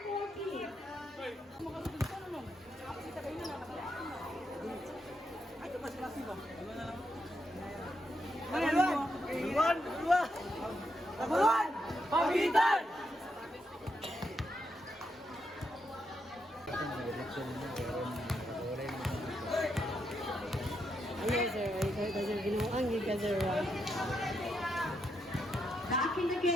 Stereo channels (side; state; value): both; normal; correlation 0.81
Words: Pagitan! Ayan sir, ay ginuang giga sir. Back in the